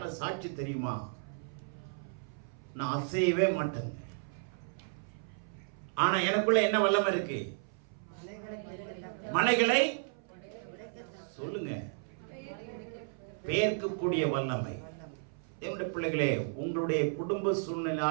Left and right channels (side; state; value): left; silent; 55 dB below the other